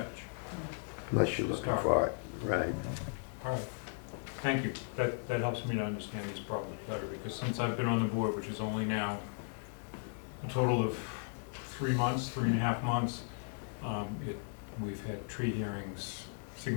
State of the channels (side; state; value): right; silent; 54 dB below the other